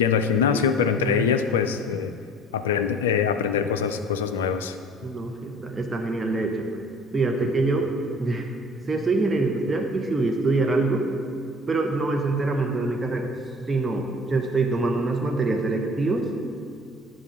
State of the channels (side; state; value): both; normal; correlation 0.46